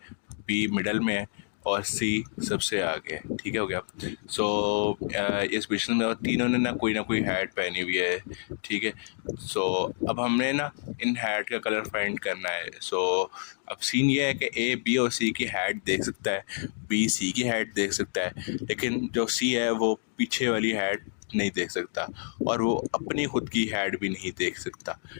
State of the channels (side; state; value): right; silent; digital silence